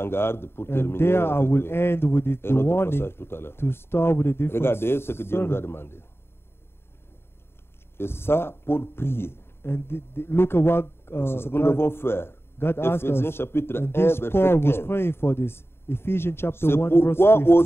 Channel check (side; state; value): right; late; 0.11 ms